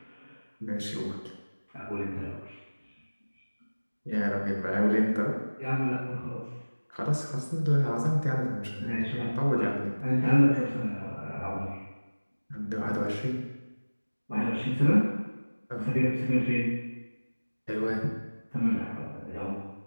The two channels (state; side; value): inverted; both; correlation -1.00